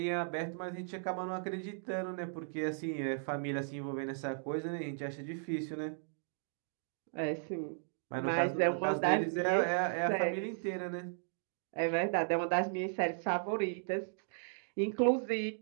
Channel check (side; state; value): left; silent; digital silence